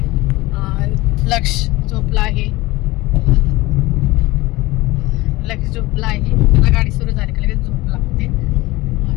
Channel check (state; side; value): quieter; right; 20.2 dB